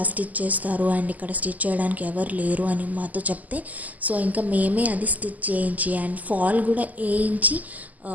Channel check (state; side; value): late; left; 0.079 ms